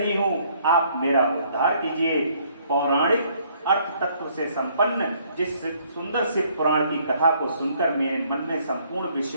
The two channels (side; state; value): both; inverted; correlation -0.64